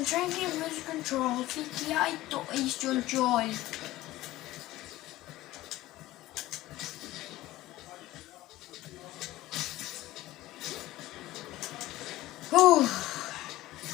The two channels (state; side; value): quieter; right; 16.8 dB